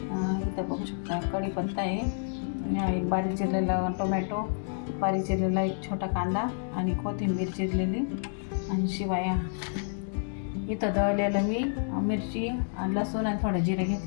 बघू शकता कढीपत्ता आहे, एक बारीक चिरलेला टोमॅटो, बारीक चिरलेला एक छोटा कांदा आणि कोथिंबीर चिरलेली आणि शिवाय इथं दळलेलं मी मिरची आणि लसूण आणि थोडं जिरे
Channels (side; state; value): right; silent; digital silence